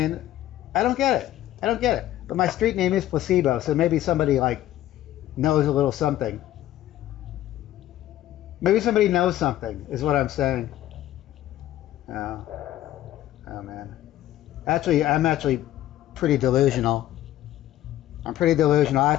I don't get it. I don't get it. But my street name is Placebo, so maybe somebody like knows a little something. Maybe somebody knows something, is what I'm saying. Oh, oh man. Actually, I'm actually pretty delusional. I'm pretty delusional. I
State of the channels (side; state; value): right; quieter; 13.7 dB